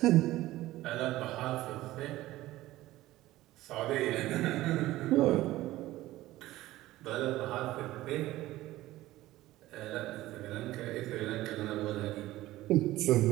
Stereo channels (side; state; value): left; quieter; 16.5 dB